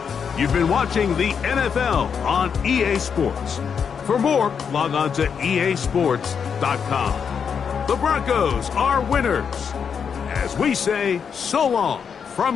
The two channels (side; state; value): right; quieter; 6.8 dB